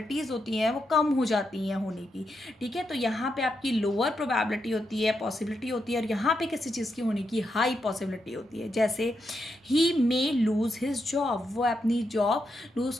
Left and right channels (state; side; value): normal; both; correlation 0.83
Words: होती हैं वो कम हो जाती हैं होने की। ठीक है, तो यहाँ पे आपकी लोअर प्रोबेबिलिटी होती है, पॉसिबिलिटी होती है, और यहाँ पे किसी चीज़ की होने की हाई पॉसिबिलिटी होती है। जैसे ही मे लूज हिज जॉब, वो अपनी जॉब लूज